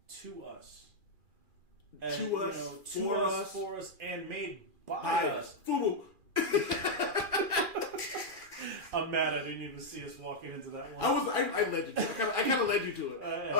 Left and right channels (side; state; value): left; late; 2.4 ms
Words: to us, for us, and made by us. FUBU. I'm mad I didn't even see us walking into that one. I led you to it. I kind of led you to it.